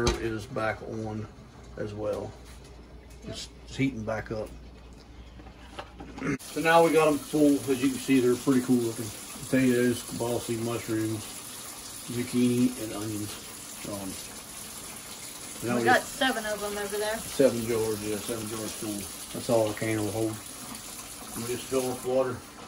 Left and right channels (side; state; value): both; identical; correlation 1.00